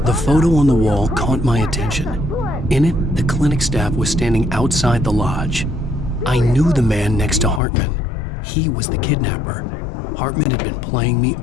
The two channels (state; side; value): drops out; right; at 7.6 s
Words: The photo on the wall caught my attention. In it, the clinic staff was standing outside the lodge. I knew the man next to Hartman. He was the kidnapper. Hartman had been playing me